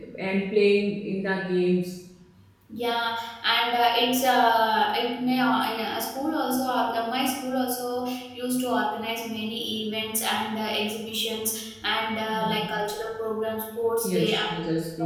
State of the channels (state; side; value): identical; both; correlation 1.00